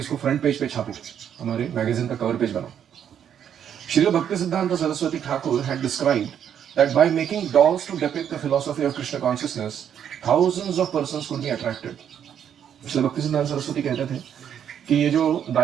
फ्रंट पेज पे छापो, हमारे मैगजीन का कवर पेज बनाओ। Srila Bhaktisiddhanta Saraswati Thakur had described that by making dolls to depict the philosophy of Krishna consciousness, thousands of persons could be attracted. Srila Bhaktisiddhanta Saraswati कहते थे कि ये जो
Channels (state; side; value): quieter; left; 9.0 dB